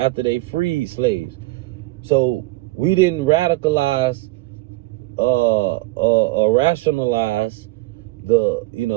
they freed slaves. So we didn't radicalize or rationalize the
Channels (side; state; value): left; quieter; 21.3 dB